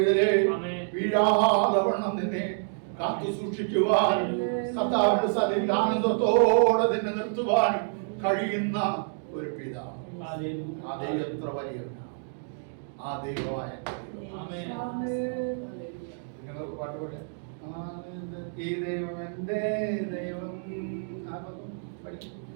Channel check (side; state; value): left; silent; digital silence